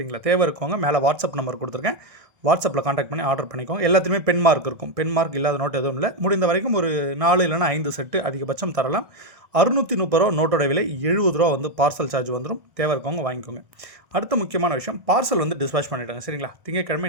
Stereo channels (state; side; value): late; left; 1.6 ms